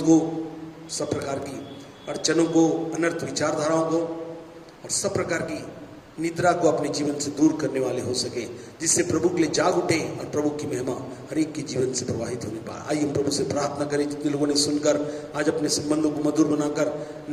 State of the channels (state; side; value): identical; both; correlation 1.00